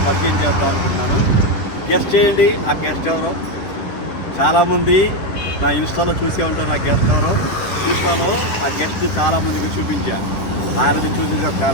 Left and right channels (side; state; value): right; late; 10 ms